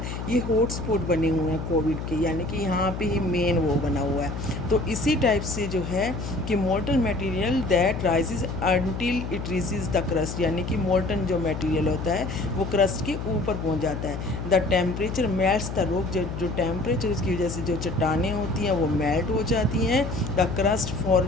ये हॉटस्पॉट बने हुए हैं कोविड के, यानी कि यहाँ पे ही मेन वो बना हुआ है। तो इसी टाइप से जो है कि molten material that rises until it reaches the crust, यानी कि मोल्टन जो मटेरियल होता है वो क्रस्ट के ऊपर पहुँच जाता है। The temperature melts the rock, जो टेम्परेचर की वजह से जो चट्टानें होती हैं वो मेल्ट हो जाती हैं। The crust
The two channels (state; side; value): noise; left; hum, 6 dB below the sound